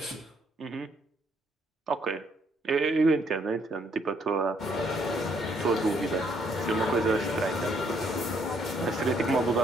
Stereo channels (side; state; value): both; normal; correlation 0.69